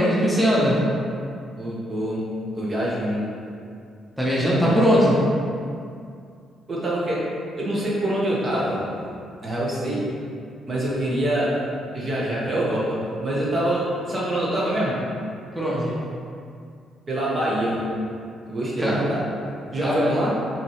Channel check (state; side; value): normal; both; correlation 0.75